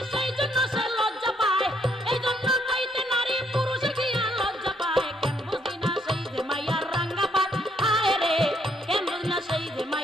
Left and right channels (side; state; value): both; normal; correlation 0.71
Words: সেই জন্য সে লজ্জা পায়। এই জন্য কইতে নারী, পুরুষে গিয়া লজ্জা পায়। কেন বুঝি না সেই যে মাইয়ার রাঙ্গা পায়, হায় রে। কেন বুঝি না সেই যে